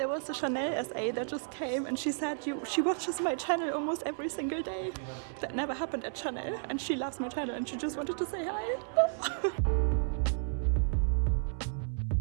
was a Chanel SA that just came and she said she watches my channel almost every single day. That never happened at Chanel and she loves my channel and she just wanted to say hi.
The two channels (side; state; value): left; silent; 56 dB below the other